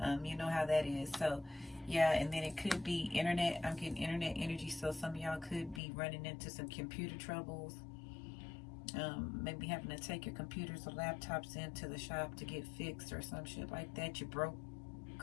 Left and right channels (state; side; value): drops out; right; at 5.8 s